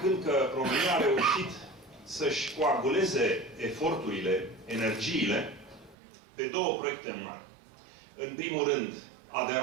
că România a reușit să-și coaguleze eforturile, energiile, pe două proiecte mari. În primul rând,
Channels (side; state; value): left; drops out; at 6.0 s